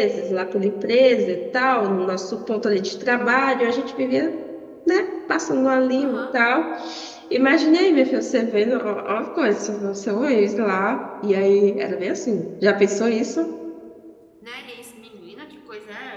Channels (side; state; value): both; identical; correlation 1.00